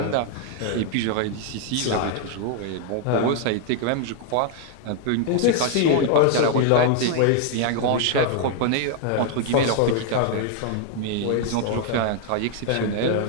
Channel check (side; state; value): both; different; correlation 0.00